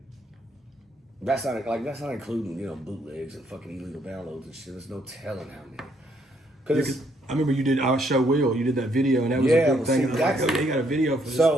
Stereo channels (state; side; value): normal; both; correlation 0.70